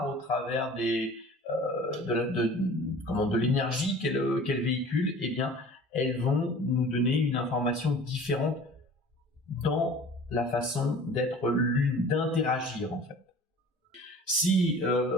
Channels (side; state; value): both; normal; correlation 0.45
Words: au travers de l'énergie qu'elles véhiculent, eh bien, elles vont nous donner une information différente dans la façon d'être l'une, d'interagir en fait. Si